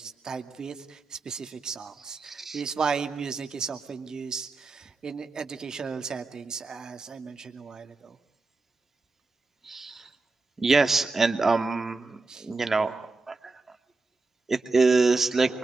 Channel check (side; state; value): left; quieter; 3.7 dB